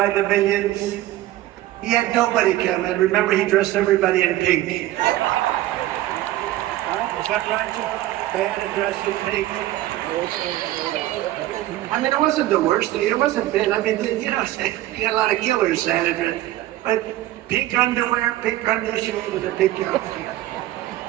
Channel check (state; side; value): quieter; left; 15.1 dB